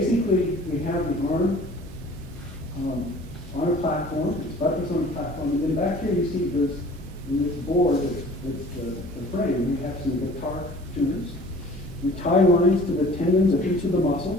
we have the arm on a platform, it's buttressed on a platform, and then back here you see there's in this board that's the frame, we have some guitar tuners. We tie lines to the tendons of each of the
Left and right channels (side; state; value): both; normal; correlation 0.48